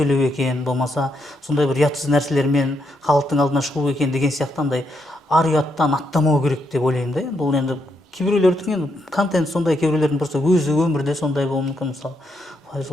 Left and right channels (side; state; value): both; normal; correlation 0.79